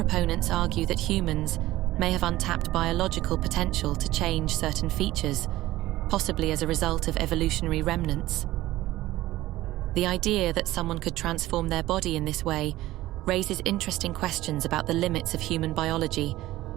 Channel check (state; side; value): quieter; left; 16.4 dB